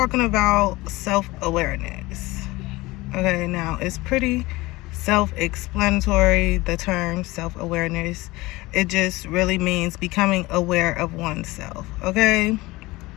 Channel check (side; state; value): right; quieter; 20.7 dB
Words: about self-awareness. Okay, now it's pretty self-explanatory, the term self-awareness. It just really means becoming aware of oneself. Okay,